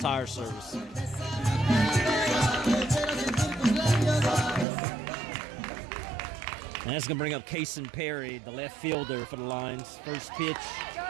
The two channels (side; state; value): left; drops out; at 4.7 s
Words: Service. And that's going to bring up Kason Perry, the left fielder for the Lions. First pitch